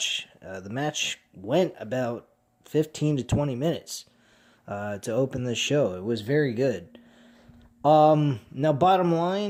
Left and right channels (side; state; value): both; identical; correlation 1.00